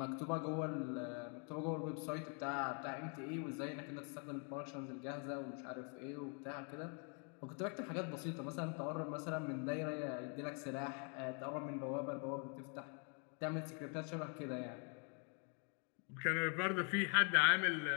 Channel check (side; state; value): right; quieter; 39.1 dB